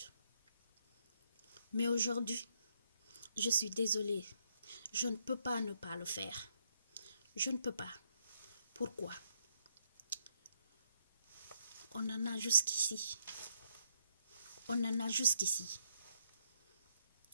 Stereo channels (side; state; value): both; inverted; correlation -0.73